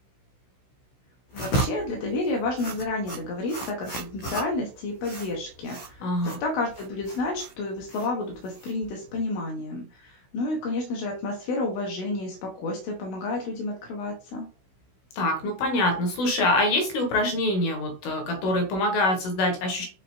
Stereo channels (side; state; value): right; late; 16 ms